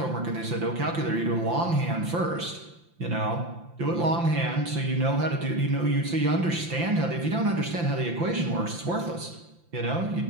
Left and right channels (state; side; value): late; left; 5.8 ms